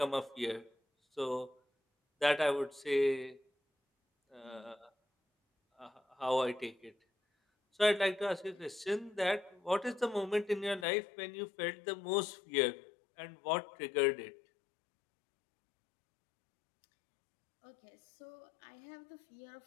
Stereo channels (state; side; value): drops out; right; at 10.9 s